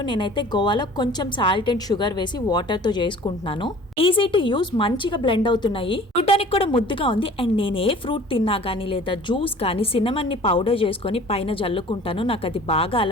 నేనైతే గోవాలో కొంచెం సాల్ట్ అండ్ షుగర్ వేసి వాటర్ తో చేసుకుంటున్నాను. ఈజీ టు యూజ్, మంచిగా బ్లెండ్ అవుతున్నాయి. చూడడానికి కూడా ముద్దుగా ఉంది. అండ్ నేను ఏ ఫ్రూట్ తిన్నా గానీ లేదా జ్యూస్ కానీ సిన్నమన్ ని పౌడర్ చేసుకొని పైన జల్లుకుంటాను. నాకు అది బాగా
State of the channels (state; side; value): normal; both; correlation 0.47